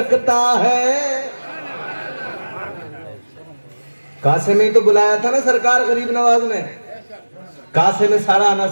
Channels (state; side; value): inverted; both; correlation -1.00